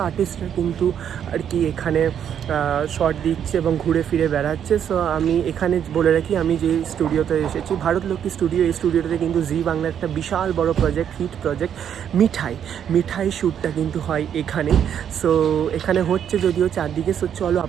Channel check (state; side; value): quieter; left; 9.0 dB